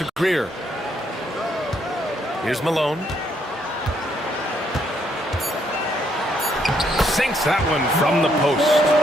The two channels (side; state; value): both; normal; correlation 0.72